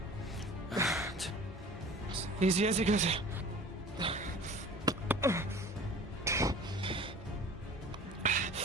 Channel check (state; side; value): normal; both; correlation 0.43